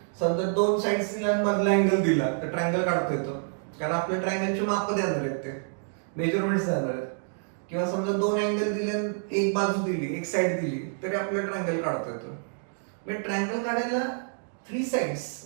समजा 2 साइड्स दिल्या मधला अँगल दिला तर ट्रायंगल काढता येतो कारण आपल्या ट्रायंगलचे माप देणार आहेत, ते मेजरमेंट्स देणार आहेत. किंवा समजा 2 अँगल दिले, एक बाजू दिली, एक साइड दिली तरी आपल्याला ट्रायंगल काढता येतो. म्हणजे ट्रायंगल काढायला 3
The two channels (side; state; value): left; silent; digital silence